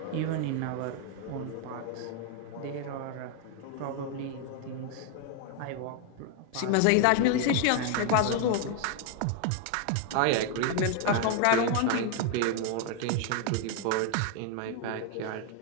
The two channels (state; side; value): different; both; correlation 0.00